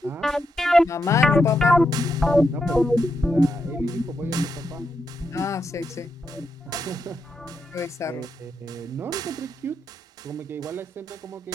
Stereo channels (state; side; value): normal; both; correlation 0.83